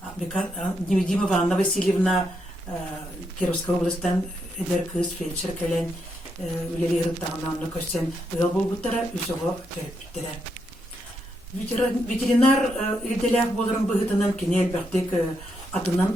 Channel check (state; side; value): normal; both; correlation 0.80